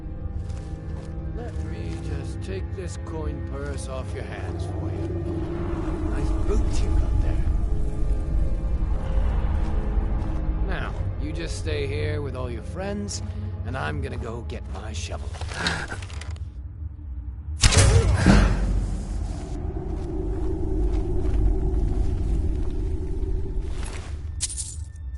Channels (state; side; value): identical; both; correlation 1.00